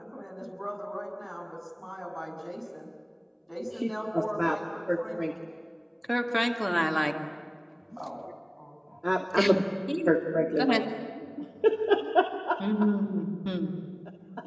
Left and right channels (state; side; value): identical; both; correlation 1.00